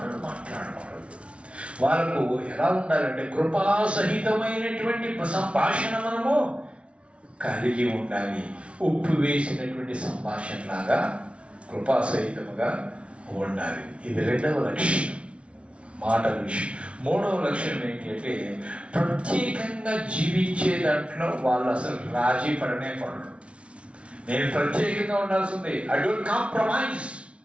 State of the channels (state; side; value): late; left; 0.060 ms